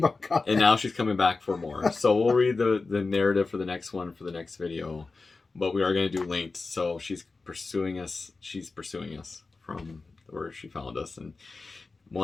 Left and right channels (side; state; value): right; quieter; 3.9 dB